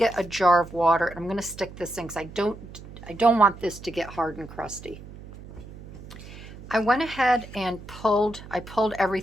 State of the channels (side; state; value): right; noise; hum, 16 dB below the sound